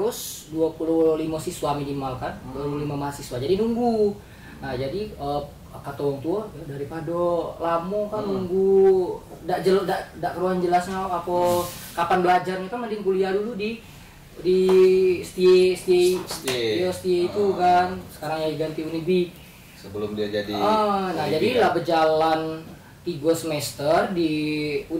25 siswa minimal kan, 25 mahasiswa. Jadi nunggu. Nah, jadi kata orang tua daripada lama kan nunggu ndak keruan jelasnya apa kapan belajarnya kan, mending kuliah dulu di STI itu kan, sekarang ya ganti Unibi sebelum dia jadi nah jadi lah berjalan 3 semester di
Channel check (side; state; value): both; identical; correlation 1.00